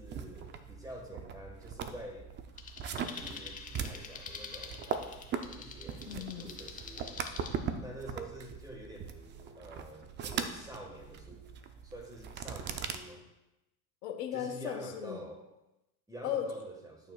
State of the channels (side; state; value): both; normal; correlation 0.18